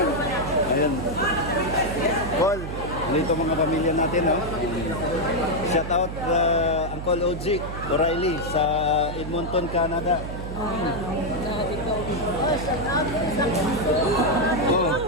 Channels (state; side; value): noise; right; hum, 7 dB below the sound